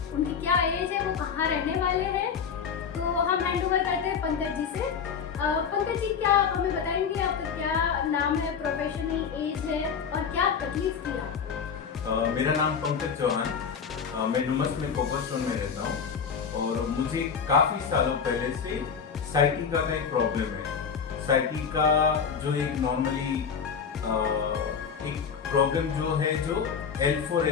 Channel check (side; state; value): right; quieter; 6.6 dB